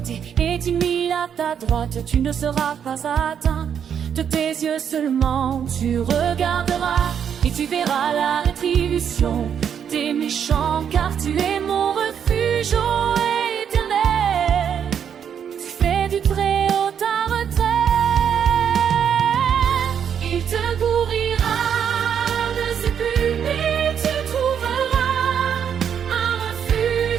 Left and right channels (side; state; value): left; quieter; 8.2 dB